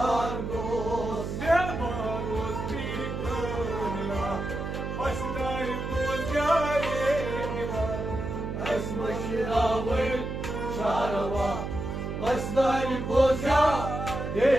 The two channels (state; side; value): noise; right; hum, 5 dB below the sound